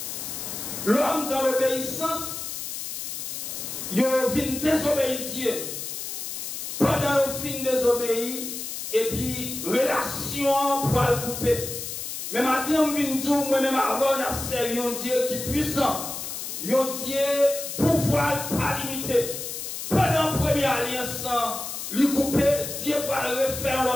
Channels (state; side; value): noise; left; hiss, 6 dB below the sound